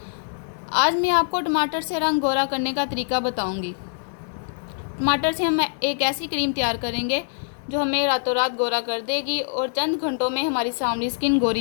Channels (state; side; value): silent; right; digital silence